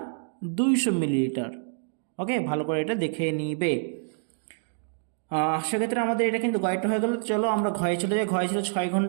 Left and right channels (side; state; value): left; silent; digital silence